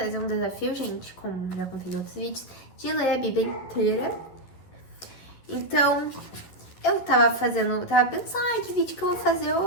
um desafio, gente, como já contei em outros vídeos, de ler a Bíblia inteira. Então, eu tava pensando, que vídeo que eu vou fazer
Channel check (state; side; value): late; right; 11 ms